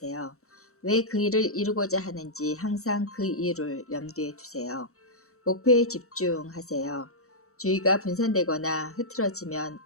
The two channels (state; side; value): late; right; 0.64 ms